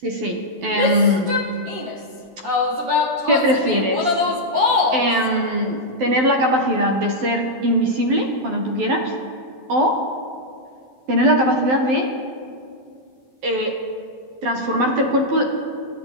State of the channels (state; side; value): late; left; 12 ms